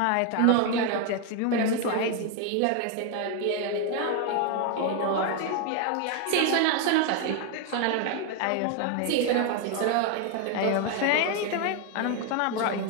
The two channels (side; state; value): both; different; correlation 0.01